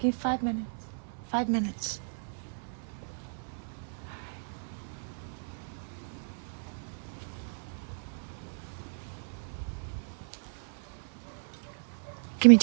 5 minutes. 5 minutes. Give me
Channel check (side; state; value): left; silent; 55 dB below the other